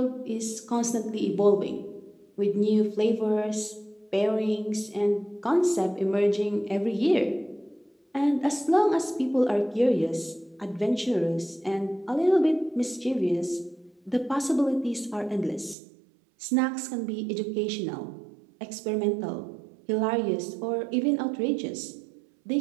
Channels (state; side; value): drops out; left; at 15.8 s